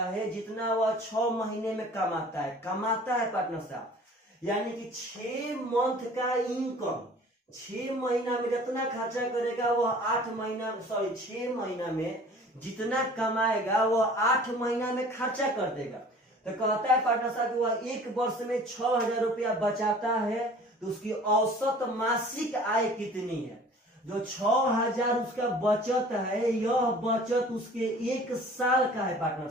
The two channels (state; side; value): normal; both; correlation 0.47